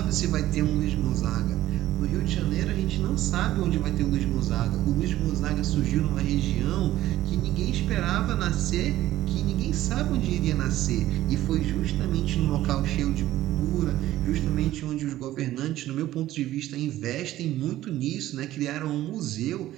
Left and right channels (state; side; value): quieter; left; 14.4 dB